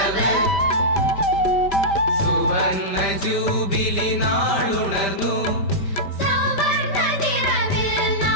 സുവർണ്ണ ജൂബിലി നാളുണർന്നു സുവർണ്ണ നിറവിൽ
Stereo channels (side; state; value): right; late; 5.1 ms